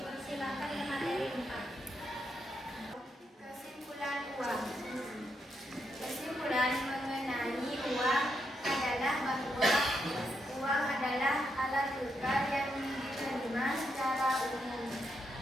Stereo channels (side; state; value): both; normal; correlation 0.81